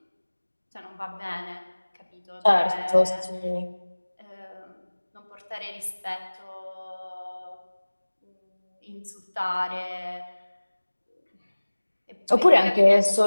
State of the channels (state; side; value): inverted; both; correlation -1.00